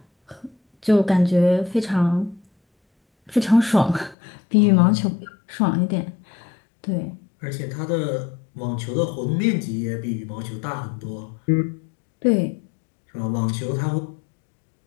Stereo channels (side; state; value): right; drops out; at 4.2 s